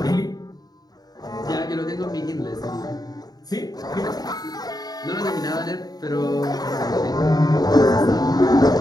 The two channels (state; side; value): late; right; 0.19 ms